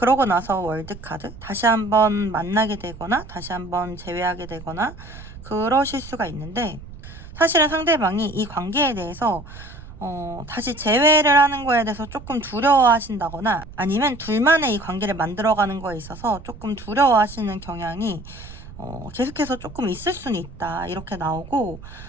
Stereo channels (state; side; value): noise; right; rumble, 16 dB below the sound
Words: 나서 월드카드 다시 한번 만나게 되거나 다시 한번 재회하게 되거나 그러실 수가 있는데 사실은 상대방이 이 관계에 대해서 다시 재회를 하는 거에 대해서 조금 두려워하신다거나 아니면 둘만의 이 관계를 만들어가는 거에 있어서 조금 두려워하시는 경향이 계속해서 조금 있을 수는 있다 이렇게 나오고